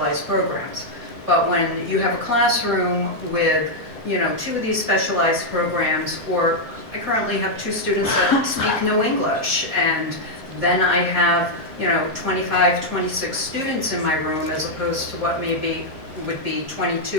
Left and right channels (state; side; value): normal; both; correlation -0.02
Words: programs. But when you have a classroom with, 2 of these specialized programs, or I currently have 2 students that speak no English, and then I have, 25, 26 students in my room as opposed to what would be